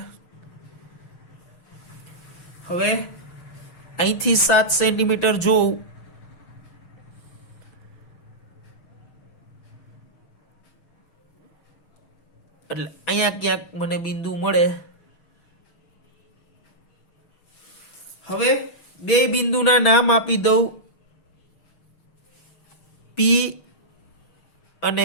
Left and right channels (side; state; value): right; late; 6.4 ms